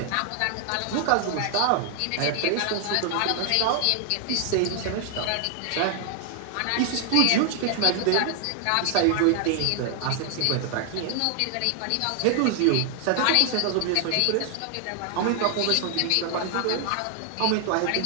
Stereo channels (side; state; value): both; different; correlation 0.00